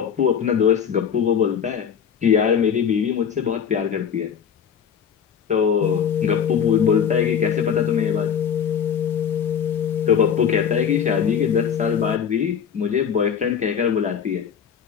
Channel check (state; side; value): quieter; right; 7.7 dB